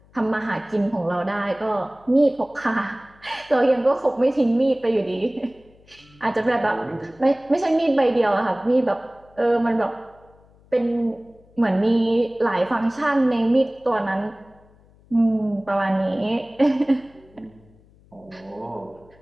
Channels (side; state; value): left; noise; hum, 29 dB below the sound